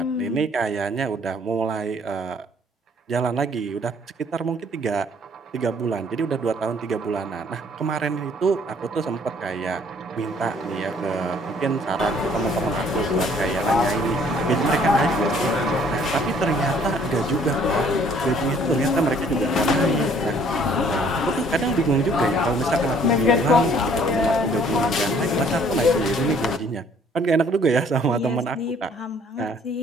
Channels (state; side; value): normal; both; correlation 0.59